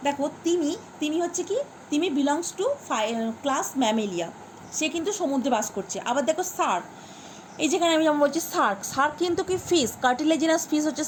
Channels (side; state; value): both; identical; correlation 1.00